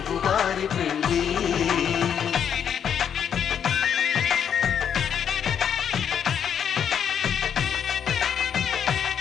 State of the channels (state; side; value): quieter; right; 8.3 dB